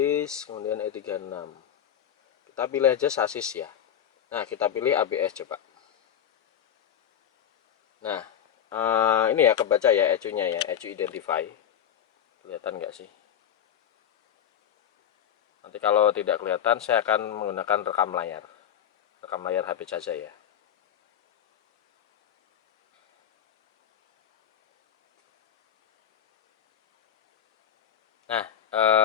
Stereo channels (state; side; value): quieter; right; 9.5 dB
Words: kemudian E36. Kita pilih aja sasis ya. Nah, kita pilih ABS coba. Nah, ini ya kebaca ya ECU-nya ya, ECU identify. Kelihatan nggak sih? Nanti kalau tidak kelihatan, saya akan menggunakan rekam layar HP saja ya. Nah,